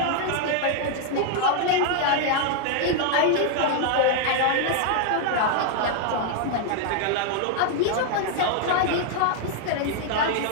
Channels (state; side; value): different; both; correlation 0.00